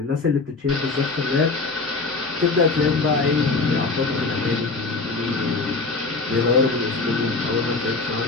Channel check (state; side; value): quieter; right; 3.8 dB